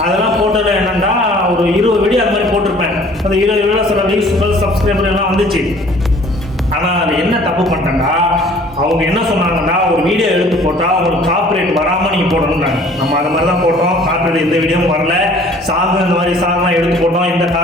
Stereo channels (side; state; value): both; normal; correlation 0.53